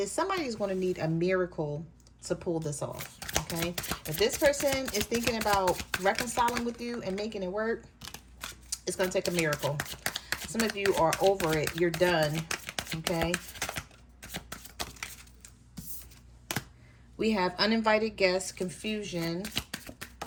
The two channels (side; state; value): both; identical; correlation 1.00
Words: somebody is going to need a miracle to pull this off. Okay, if this person is thinking about reconciling with you and making it work, it's going to take a miracle. Some of you are over it. You're done. Okay. We have uninvited guests, confusion,